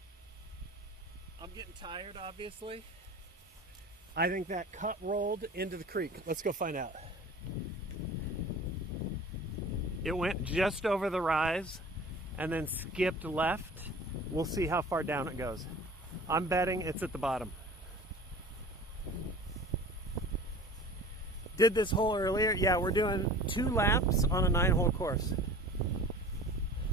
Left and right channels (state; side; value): normal; both; correlation 0.42